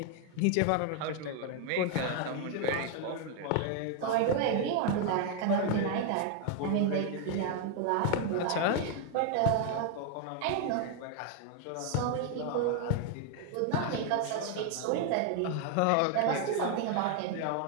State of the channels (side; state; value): both; different; correlation 0.00